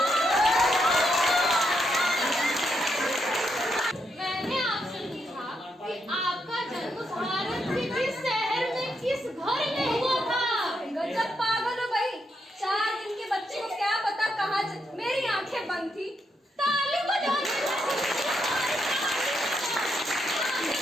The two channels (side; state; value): both; normal; correlation 0.80